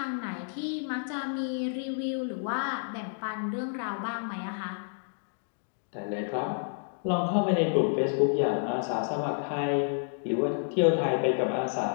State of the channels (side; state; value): right; silent; digital silence